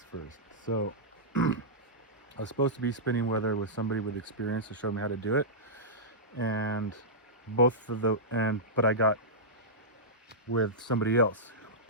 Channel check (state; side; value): normal; both; correlation -0.13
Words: first. So, I was supposed to be spinning weather with somebody with experience to show me how to do it, and but I got with somebody else,